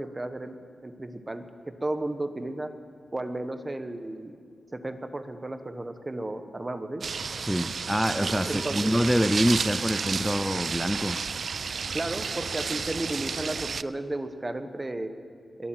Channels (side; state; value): both; normal; correlation 0.96